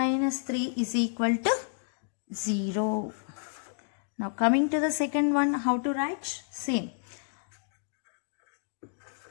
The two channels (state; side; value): silent; right; digital silence